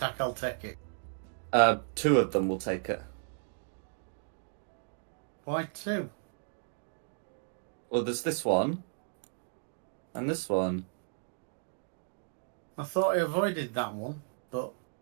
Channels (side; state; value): left; silent; digital silence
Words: I'll take it. 2 of them will take it. Why 2? Well, there's this one. And this one. I thought I avoided that one, but